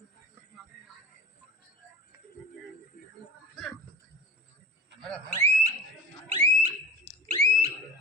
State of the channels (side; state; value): both; normal; correlation 0.36